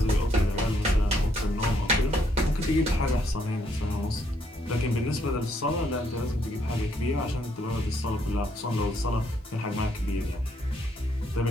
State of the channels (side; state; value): both; normal; correlation 0.72